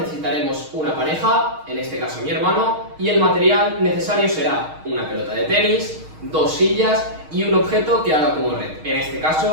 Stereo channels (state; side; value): late; left; 6.4 ms